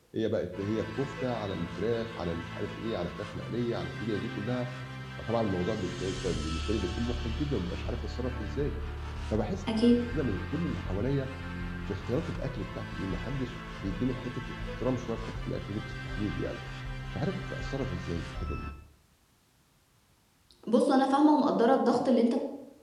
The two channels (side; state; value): both; identical; correlation 1.00